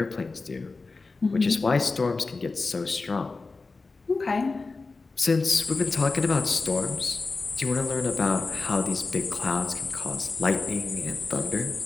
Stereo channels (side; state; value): right; quieter; 3.8 dB